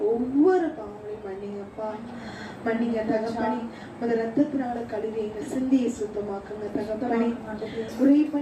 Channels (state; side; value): identical; both; correlation 1.00